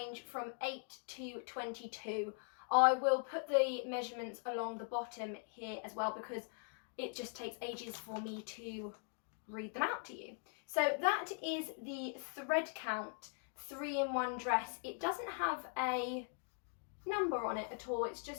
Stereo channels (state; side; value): silent; right; 50 dB below the other